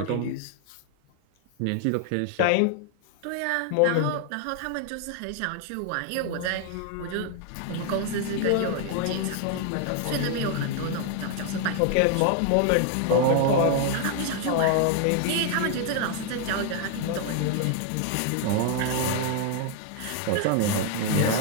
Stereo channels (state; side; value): different; both; correlation 0.00